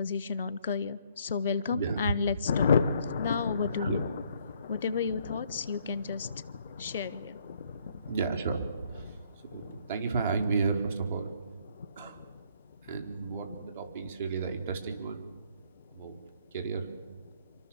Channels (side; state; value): both; inverted; correlation -0.66